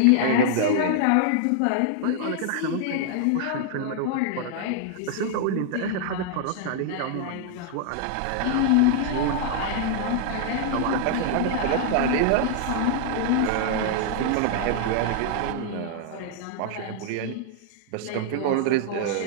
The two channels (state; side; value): different; both; correlation -0.01